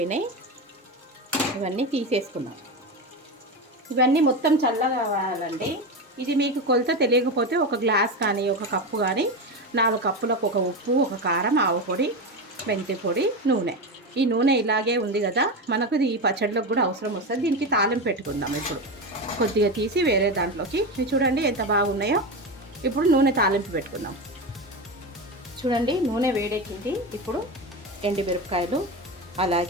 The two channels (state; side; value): normal; both; correlation 0.19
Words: ఇవన్నీ తీసేసుకుందాం. ఇవన్నీ మొత్తం చల్లగా కావాలండి. ఇది మీకు కొలత తెలియకపోతే ఒక గ్లాస్ కానీ ఒక కప్పు కానీ 4 కప్పులకు ఒక ఉప్పు, ఒక కారం, ఆవు పొడి, మెంతి పొడి, నూనె. ఈ నూనె ఇలాగే ఉంది కదా, మనకు ఈ పచ్చడిలోకి కూడా అవసరం వస్తుంది. దీనికి తాలింపు పెట్టుకుందాం. ఇప్పుడు కొద్దిగా తీసి వేరే దాంట్లోకి, చూడండి ఎంత బాగున్నాయో. ఇప్పుడు నూనె తాలింపు పెట్టుకుందాం. చూడండి నూనె వేడెక్కింది. ఇప్పుడు ఎండుమిరపకాయలు,